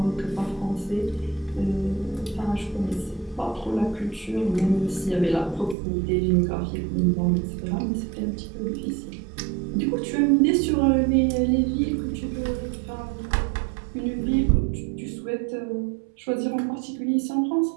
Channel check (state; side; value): drops out; left; at 5.8 s